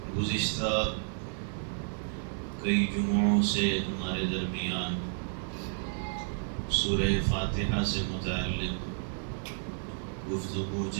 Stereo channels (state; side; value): silent; left; 57 dB below the other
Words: گزشتہ کئی جمعوں سے ہمارے درمیان سورہ فاتحہ سے متعلق گفتگو